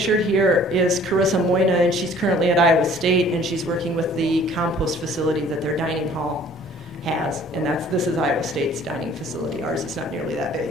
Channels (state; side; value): normal; both; correlation 0.53